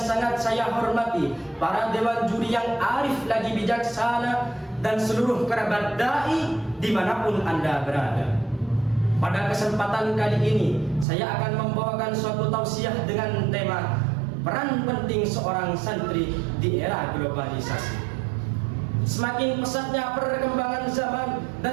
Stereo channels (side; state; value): left; drops out; at 11.1 s